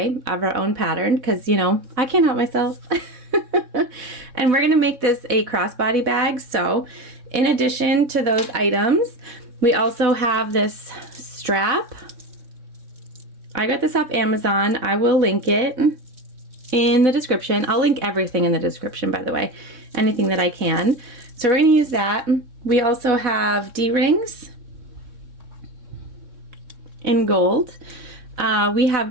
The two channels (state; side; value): late; left; 3.6 ms